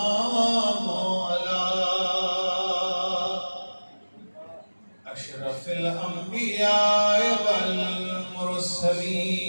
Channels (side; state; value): both; inverted; correlation -1.00